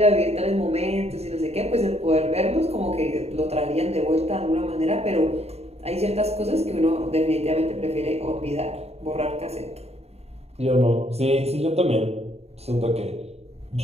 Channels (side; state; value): left; late; 0.30 ms